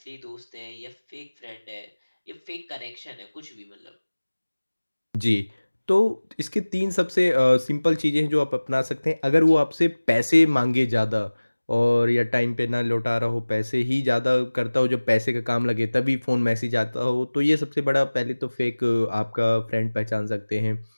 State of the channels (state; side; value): inverted; both; correlation -1.00